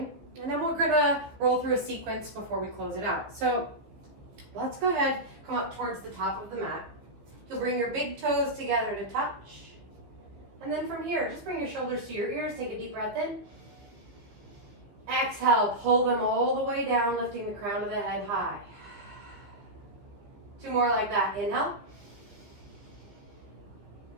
And then we're gonna roll through a sequence before we close it out. So let's go ahead, come up towards the top of the mat. You'll bring your big toes together to touch. And then from here, just bring your shoulders to your ears, take a deep breath in. Exhale, pull them all the way down, lifting the crown of the head high. 2 more like that. Inhale.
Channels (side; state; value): left; late; 15 ms